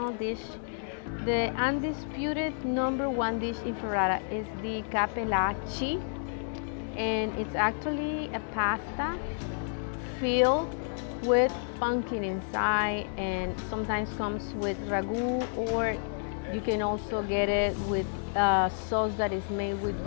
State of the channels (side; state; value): right; silent; digital silence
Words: dish. The undisputed #1 dish in Ferrara is the cappellacci, and it's actually a pasta filled with pumpkin inside, and sometimes comes with ragu, or you can also get it with sauce that is made with